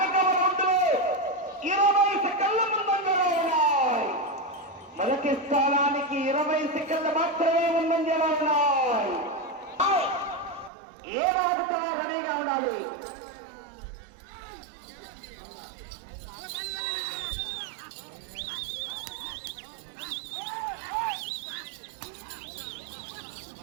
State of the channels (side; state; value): left; drops out; at 10.7 s